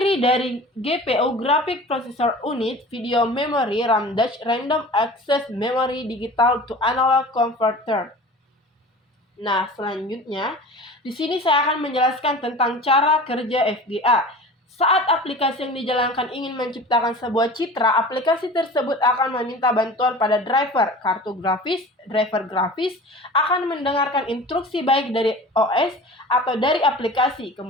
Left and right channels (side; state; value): both; normal; correlation 0.38